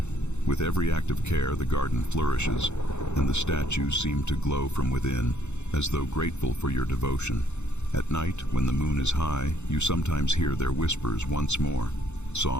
With every act of care, the garden flourishes, and the statues seem to glow from within, as though grateful for your devotion. At night, when the moon is high, you sometimes hear their whispers once more,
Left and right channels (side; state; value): right; late; 0.82 ms